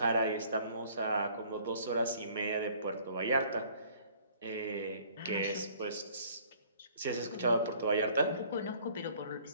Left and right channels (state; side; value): inverted; both; correlation -0.56